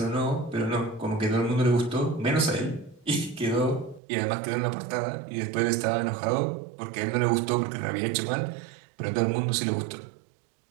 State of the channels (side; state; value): left; drops out; at 4.0 s